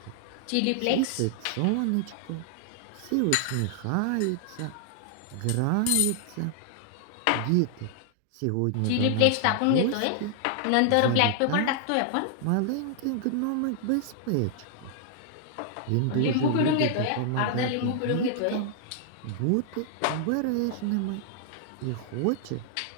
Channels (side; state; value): both; different; correlation -0.01